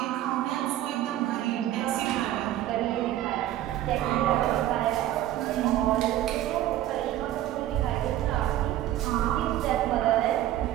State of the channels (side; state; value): left; quieter; 13.5 dB